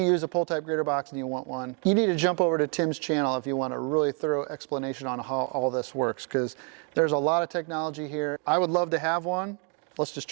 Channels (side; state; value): left; quieter; 37.9 dB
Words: use a pull-type grader box and you want one, you need to jump over to Tim's channel if you want a really thorough explanation on how all this works, because there's a lot of technology here. I would love to have one. Let's just